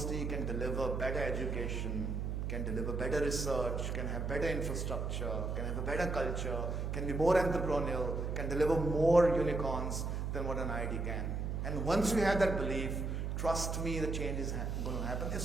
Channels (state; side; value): noise; right; hum, 2 dB below the sound